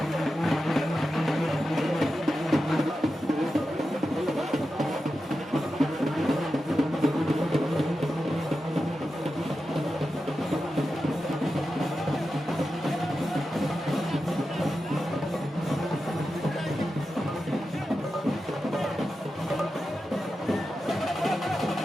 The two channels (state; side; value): normal; both; correlation 0.91